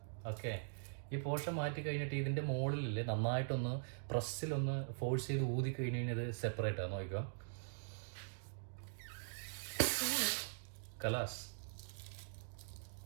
ഓക്കെ, ഈ പോർഷൻ മാറ്റി കഴിഞ്ഞിട്ട് ഇതിന്റെ മുകളിൽ നന്നായിട്ടൊന്ന് പ്രസ്സിലൊന്ന് ഫോഴ്സ് ചെയ്ത് ഊതി കഴിഞ്ഞ് കഴിഞ്ഞാൽ ഇത് സെപ്പറേറ്റ് ആണ്. നോക്കിക്കോ, കലാസ്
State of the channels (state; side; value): silent; left; digital silence